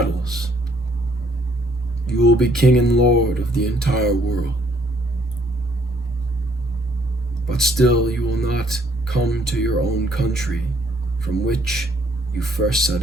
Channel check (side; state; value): both; normal; correlation 0.65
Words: you will be king and lord of the entire world. But still you will not come to your own country from which you first set